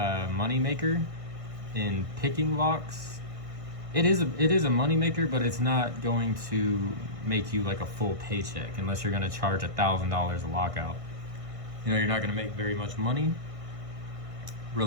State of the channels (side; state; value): left; late; 1.6 ms